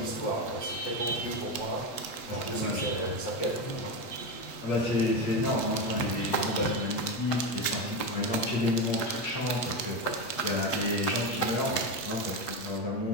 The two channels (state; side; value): late; right; 7.9 ms